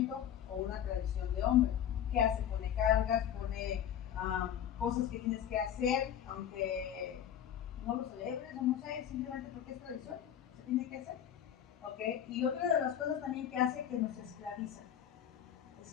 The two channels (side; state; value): right; quieter; 9.8 dB